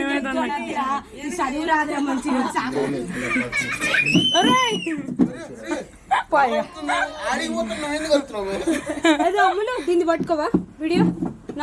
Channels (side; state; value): both; identical; correlation 1.00